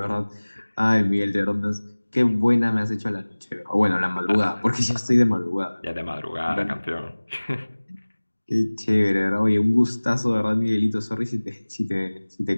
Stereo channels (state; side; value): inverted; both; correlation -1.00